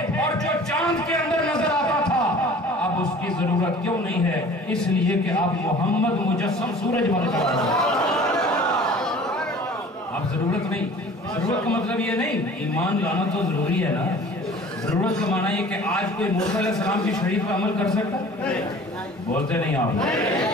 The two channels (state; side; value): normal; both; correlation 0.46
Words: اور جو چاند کے اندر نظر آتا تھا اب اس کی ضرورت کیوں نہیں ہے؟ اس لیے کہ آپ محمد مجسم سورج بن کر آئے ہیں۔ اب ضرورت نہیں۔ ضرورت کا مطلب یہ نہیں، ایمان لانا تو ضروری ہے نا۔ ضرورت کا معنی یہ کہ آج کوئی موسیٰ علیہ السلام کی شریعت پہ عمل کر سکتا؟ بولتے نہیں آپ۔